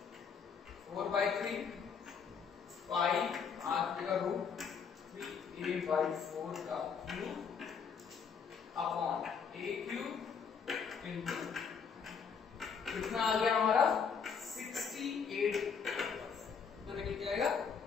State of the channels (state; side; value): quieter; right; 6.3 dB